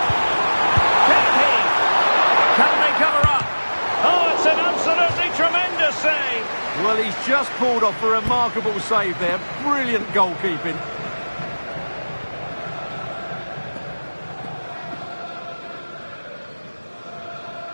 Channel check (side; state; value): both; inverted; correlation -1.00